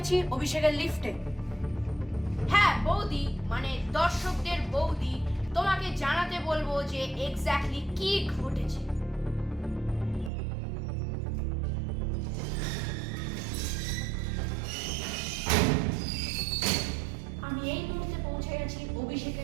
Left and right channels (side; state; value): left; drops out; at 10.3 s